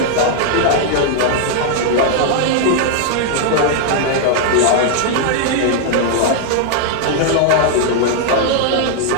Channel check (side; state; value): both; different; correlation 0.00